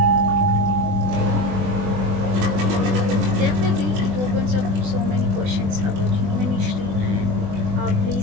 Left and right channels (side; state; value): left; late; 21 ms